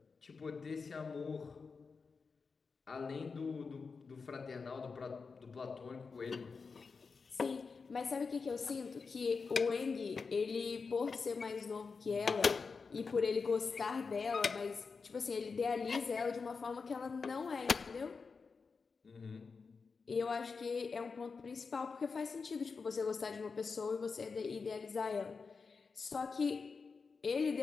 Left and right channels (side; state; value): right; quieter; 4.9 dB